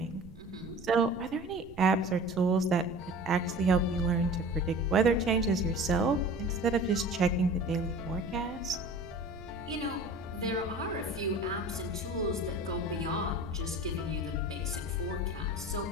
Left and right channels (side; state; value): right; noise; rumble, 18 dB below the sound